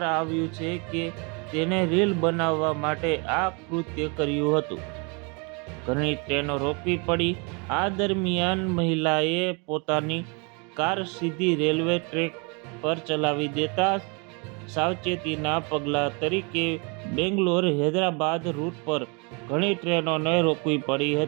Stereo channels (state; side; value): quieter; left; 32.6 dB